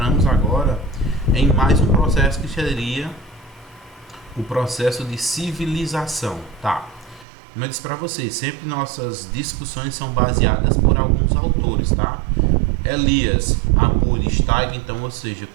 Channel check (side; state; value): left; drops out; at 7.2 s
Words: agora em mais um processo que seria o processo de civilização, tá? Como eu disse para vocês, sempre nossas discussões são baseadas por alguns autores, tá? Elias, Apuri, Steig, então, ou seja,